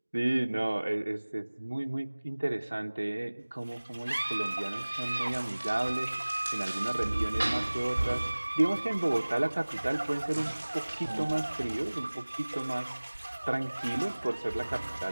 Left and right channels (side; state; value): both; inverted; correlation -1.00